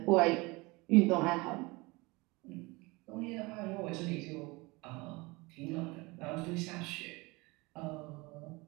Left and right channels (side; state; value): left; quieter; 24.3 dB